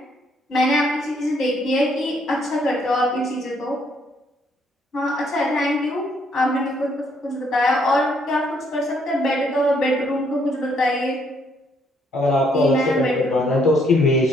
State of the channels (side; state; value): both; normal; correlation 0.70